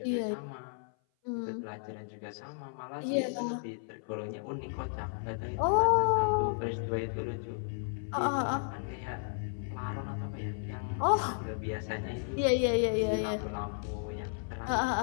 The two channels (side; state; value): right; silent; 55 dB below the other